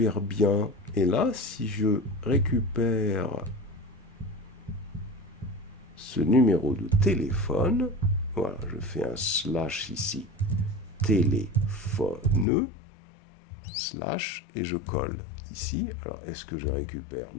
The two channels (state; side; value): drops out; right; at 12.5 s